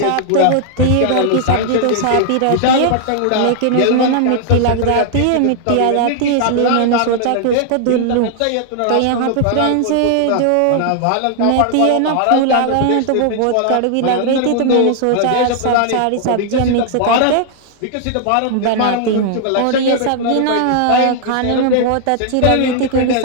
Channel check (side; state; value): both; different; correlation 0.00